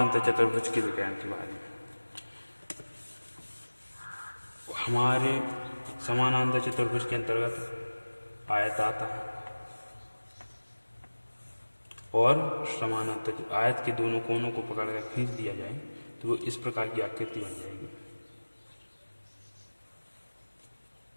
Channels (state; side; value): inverted; both; correlation -1.00